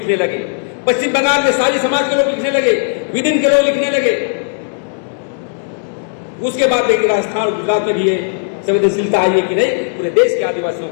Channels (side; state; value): right; silent; digital silence